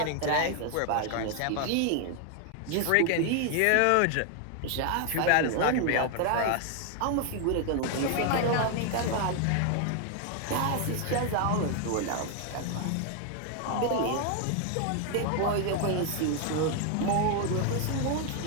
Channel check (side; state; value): both; different; correlation 0.00